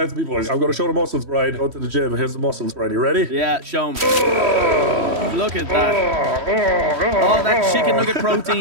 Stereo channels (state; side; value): late; left; 3.1 ms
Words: people. I'm going to show the muscles, Brian. Go to the gym. Here's the muscles, Brian. You ready? Yeah, show them. Look at that. All that chicken nugget